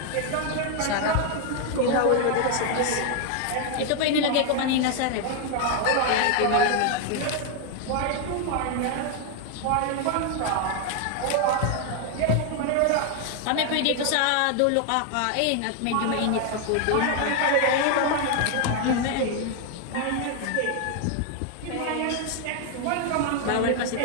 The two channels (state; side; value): different; both; correlation 0.01